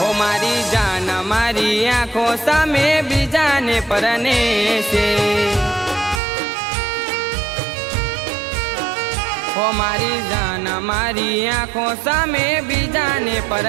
ઓ મારી જાન મારી આંખો સામે બીજાને પરણે છે, ઓ મારી જાન મારી આંખો સામે બીજાને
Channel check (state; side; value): drops out; left; at 6.2 s